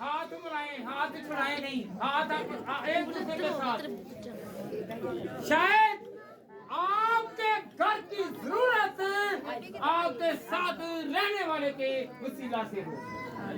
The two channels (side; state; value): both; identical; correlation 1.00